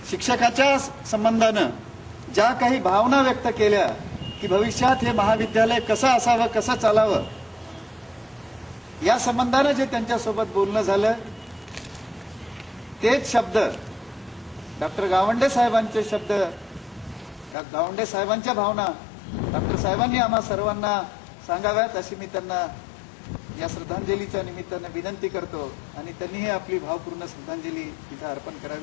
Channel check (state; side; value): drops out; right; at 17.6 s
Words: शिक्षकाच्या संबंधानं ज्या काही भावना व्यक्त केल्या की भविष्यात हे महाविद्यालय कसं असावं, कसं चालावं, या संबंधानं जे त्यांच्यासोबत बोलणं झालं तेच शब्द डॉक्टर गावंडे साहेबांचे शब्द, गावंडे साहेबांच्या भावना डॉक्टर साहेबांनी आम्हा सर्वांना सांगाव्यात अशी मी त्यांना या श्रद्धांजलीच्या निमित्तानं विनंती करतो आणि त्यांनीही आपली भावपूर्ण श्रद्धांजली तिथे अर्पण